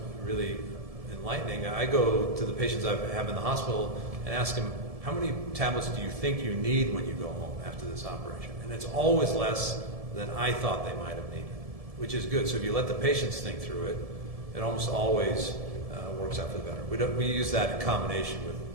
really enlightening. I go to the patients I have in the hospital and ask them, how many tablets do you think you need when you go home after this operation? And it's always less than I thought they might have needed, which is good. So if you let the patients think through it, it almost always works out for the better. We use that in combination with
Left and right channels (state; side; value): late; left; 1.7 ms